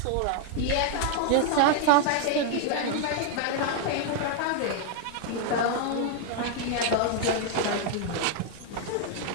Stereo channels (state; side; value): different; both; correlation 0.00